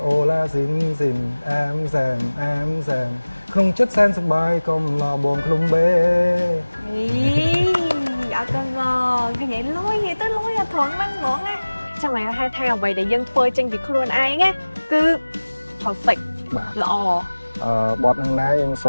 អូឡាស៊ីនអែមសែមក្នុងចិត្តសែនសប្បាយកុំលោះបងឃ្លុំបេ អីអ អត់កូនបងឃើញឯងលុយទៅលុយអត់ត្រង់ហ្នឹងហ្មងណាចាំឲ្យហៅថាអ្វីដែលយើងធ្វើចេញពីខ្លួនឯងណាគឺ perfect បាទ ល្អ បទហ្នឹងដែរយើងស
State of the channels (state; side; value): inverted; both; correlation -1.00